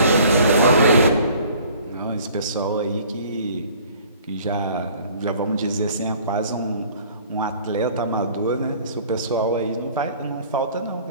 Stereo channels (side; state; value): both; inverted; correlation -0.53